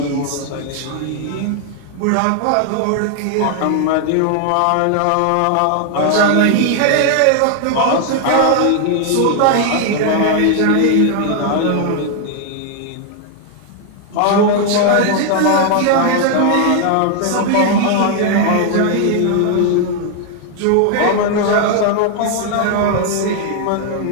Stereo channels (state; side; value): different; both; correlation 0.00